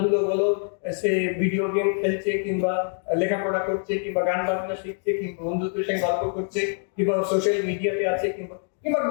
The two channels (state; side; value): silent; right; 60 dB below the other